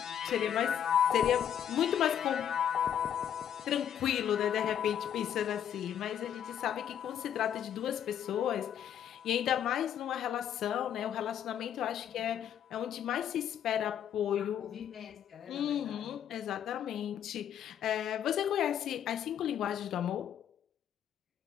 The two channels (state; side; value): quieter; right; 9.6 dB